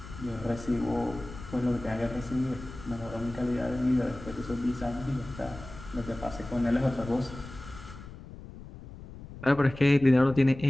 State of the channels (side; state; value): left; noise; rumble, 14 dB below the sound